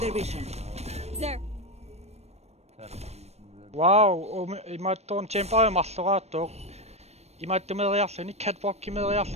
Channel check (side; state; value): left; late; 0.31 ms